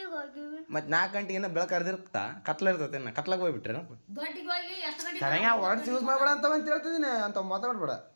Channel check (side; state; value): both; inverted; correlation -1.00